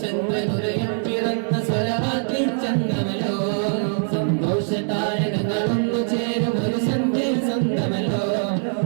ചന്ദ്രനുദയം പിറന്ന സ്വലവാക്കിൻ ചന്ദ്രമല്ലോ സന്തോഷ താരകങ്ങളൊന്നു ചേരും ഒരു സന്ധ്യയിൽ സ്വന്തമല്ലോ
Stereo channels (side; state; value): left; silent; digital silence